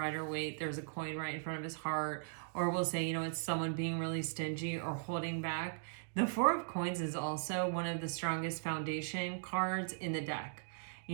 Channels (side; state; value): left; silent; digital silence